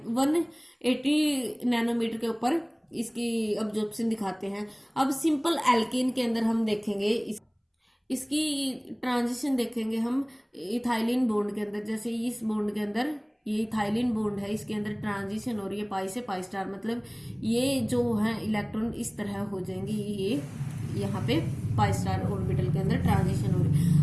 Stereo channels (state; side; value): identical; both; correlation 1.00